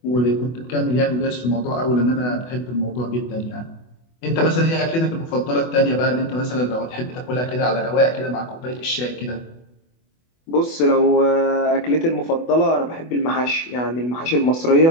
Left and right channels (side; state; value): right; late; 24 ms